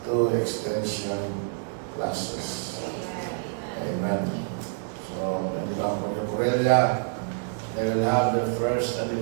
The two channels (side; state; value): left; silent; digital silence